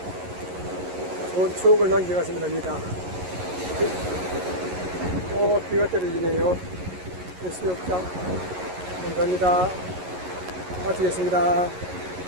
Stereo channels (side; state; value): left; late; 11 ms